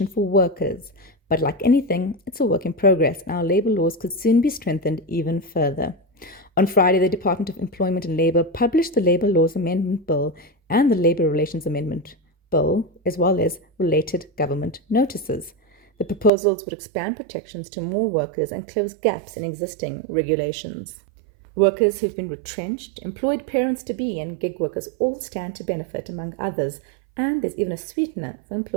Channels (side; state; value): left; drops out; at 16.3 s